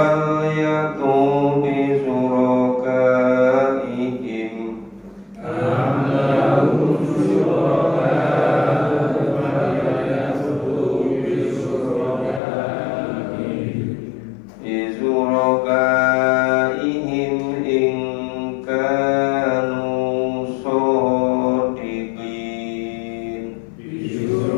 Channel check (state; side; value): drops out; right; at 12.4 s